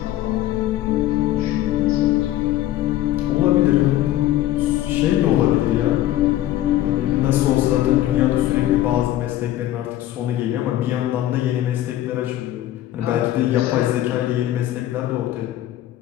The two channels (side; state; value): right; quieter; 13.8 dB